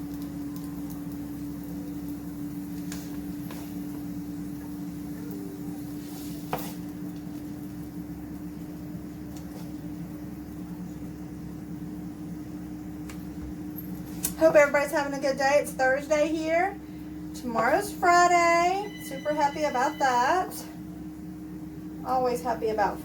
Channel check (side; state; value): both; identical; correlation 1.00